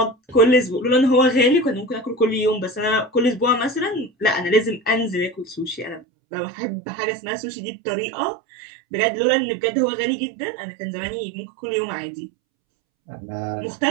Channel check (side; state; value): left; drops out; at 6.0 s